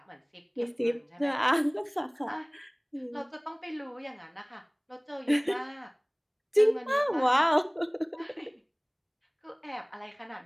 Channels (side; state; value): both; identical; correlation 1.00